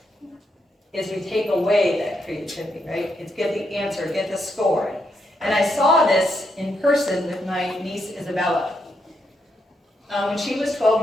is we take away that creativity, right? It's get the answer, get the score. And I saw this in person with my niece, Isabella. When she was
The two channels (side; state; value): both; normal; correlation 0.80